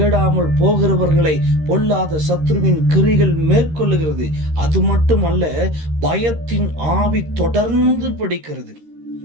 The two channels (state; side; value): late; left; 13 ms